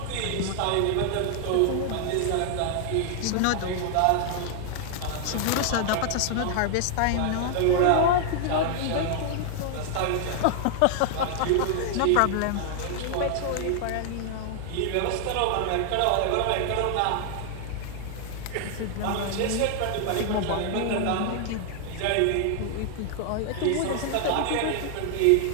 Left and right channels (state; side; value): different; both; correlation 0.00